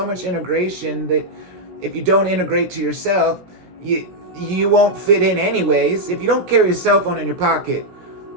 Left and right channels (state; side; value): late; left; 16 ms